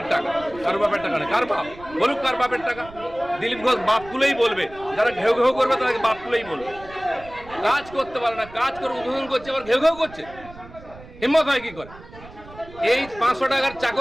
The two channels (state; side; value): noise; right; rumble, 19 dB below the sound